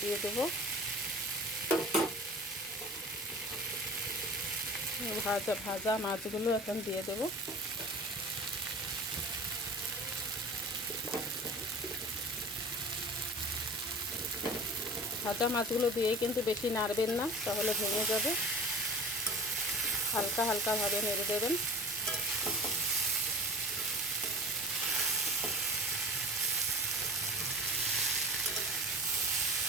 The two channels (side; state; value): both; normal; correlation 0.37